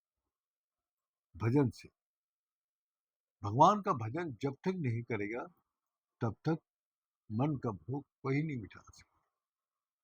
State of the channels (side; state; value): both; identical; correlation 1.00